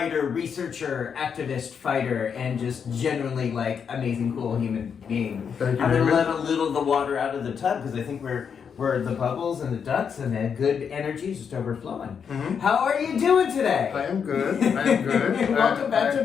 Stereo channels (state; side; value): quieter; right; 6.9 dB